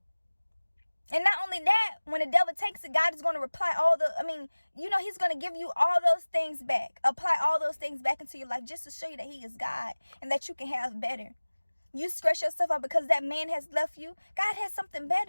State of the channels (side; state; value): both; inverted; correlation -1.00